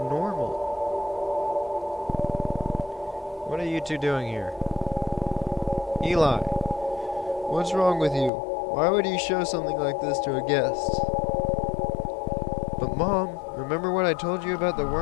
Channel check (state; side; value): drops out; right; at 8.3 s